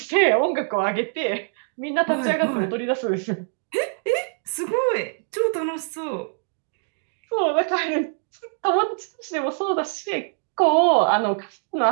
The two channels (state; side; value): silent; left; 63 dB below the other